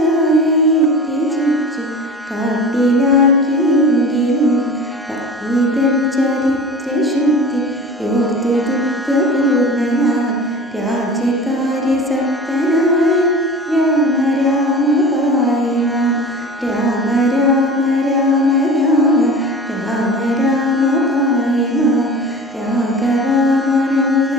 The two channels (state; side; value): normal; both; correlation 0.37